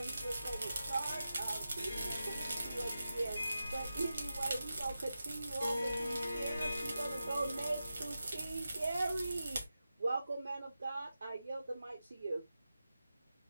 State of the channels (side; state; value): both; inverted; correlation -0.92